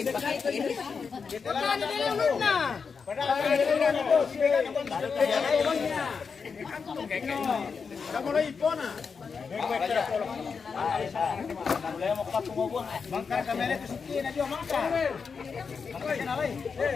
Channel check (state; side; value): quieter; right; 5.5 dB